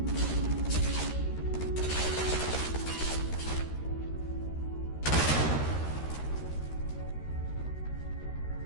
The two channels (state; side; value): late; right; 13 ms